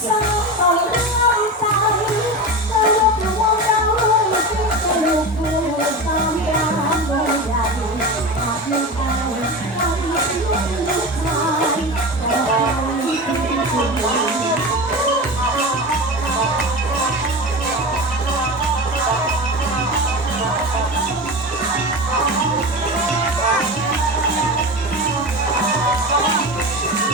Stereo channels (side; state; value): both; normal; correlation 0.26